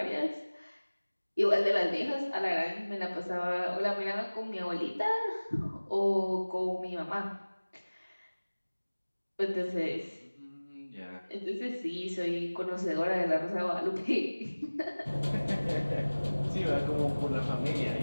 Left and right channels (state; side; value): inverted; both; correlation -1.00